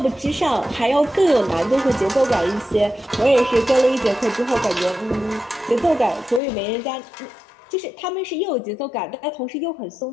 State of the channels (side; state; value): right; drops out; at 6.4 s